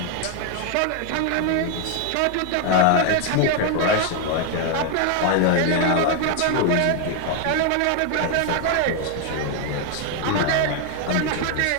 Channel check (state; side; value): different; both; correlation 0.01